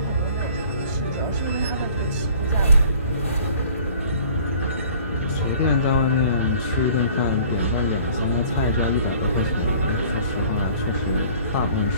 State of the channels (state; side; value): inverted; both; correlation -0.51